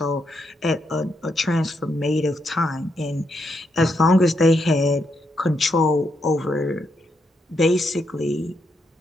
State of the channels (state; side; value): normal; both; correlation 0.80